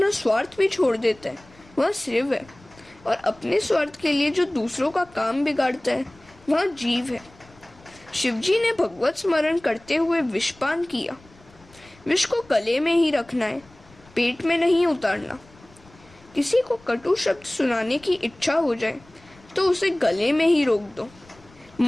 स्वार्थ भी छोड़ देता है वह शिव है, और अपने स्वार्थ के लिए जो दूसरों का काम बिगाड़ता है वह जीव है। शिवजी ने भगवत स्मरण करते हुए विषपान किया। विष को गले में ही रखना है, पेट में नहीं उतारना। किसी को कटु शब्द सुनाने की इच्छा हो जाए तो उसे गले में ही रोक दो,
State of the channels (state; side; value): noise; left; rumble, 26 dB below the sound